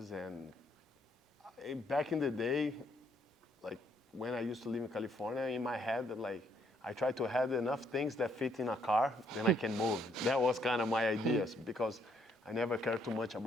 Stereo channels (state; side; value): normal; both; correlation 0.70